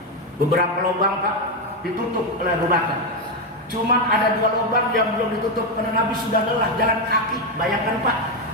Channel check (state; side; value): normal; both; correlation 0.07